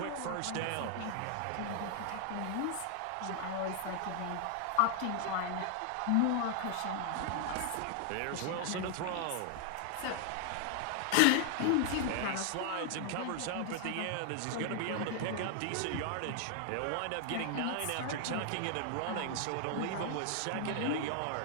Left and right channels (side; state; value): both; different; correlation 0.00